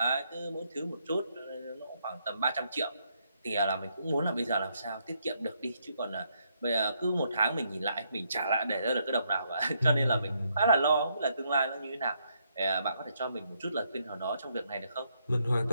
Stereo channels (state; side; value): inverted; both; correlation -0.75